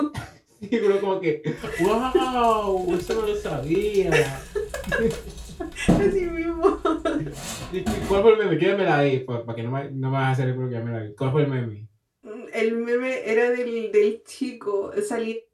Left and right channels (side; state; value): both; identical; correlation 1.00